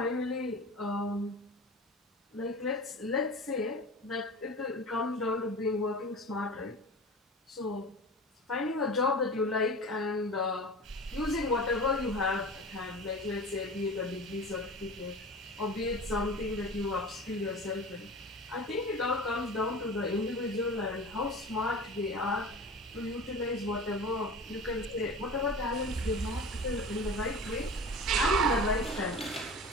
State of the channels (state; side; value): normal; both; correlation 0.34